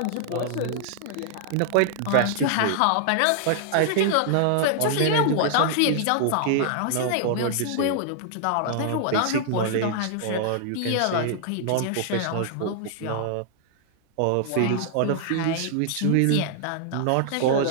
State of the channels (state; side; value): different; both; correlation -0.01